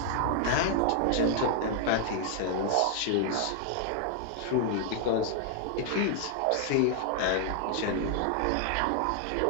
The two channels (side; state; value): both; different; correlation 0.00